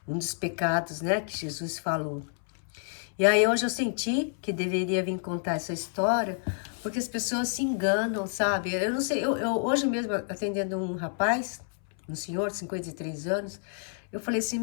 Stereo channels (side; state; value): right; silent; 59 dB below the other